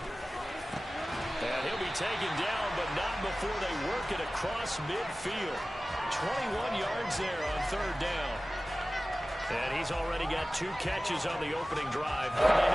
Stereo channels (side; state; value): both; normal; correlation 0.97